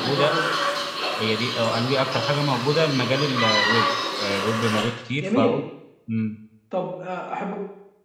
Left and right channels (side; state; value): both; identical; correlation 1.00